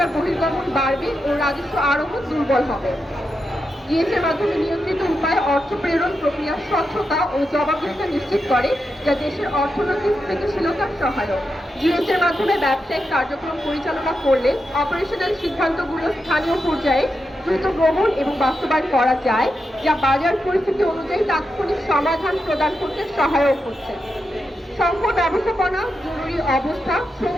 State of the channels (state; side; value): normal; both; correlation 0.87